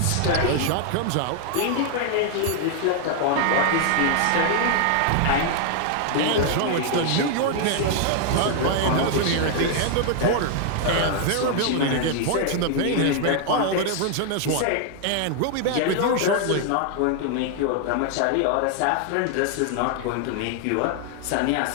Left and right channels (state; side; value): different; both; correlation 0.00